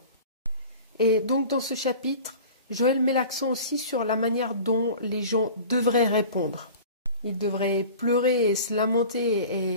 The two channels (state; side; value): inverted; both; correlation -0.40